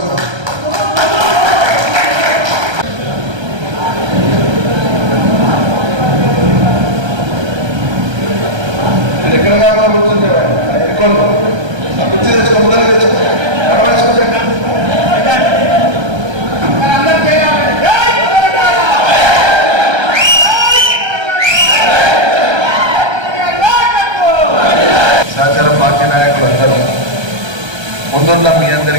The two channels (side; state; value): left; late; 1.3 ms